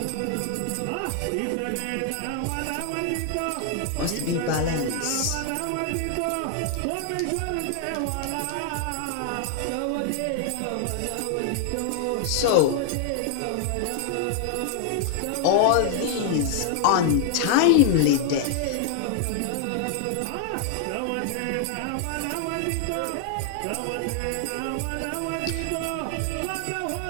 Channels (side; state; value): both; different; correlation 0.00